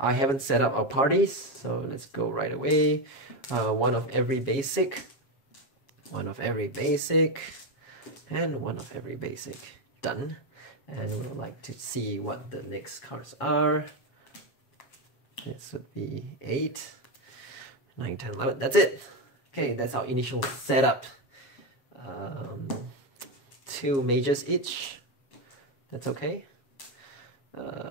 haven't set up our parties, so let's go right away. One of every basic, one of every basic, and one of every basic. Done. And we'd like to see what the next cards are. This would be 8. 9, 10, 11, that's it. Okay, that's our initial setup. 2 mages each, that's okay.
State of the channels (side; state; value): right; late; 7.3 ms